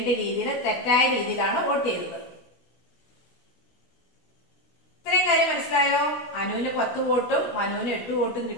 രീതിയിൽ തെറ്റായ രീതിയിലാണ് വോട്ട് ചെയ്തത്. ഇത്രയും കാര്യം മനസ്സിലായോ? അനുവിന് 10 വോട്ടും മനുവിന് 8 വോട്ടും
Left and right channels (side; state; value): right; late; 16 ms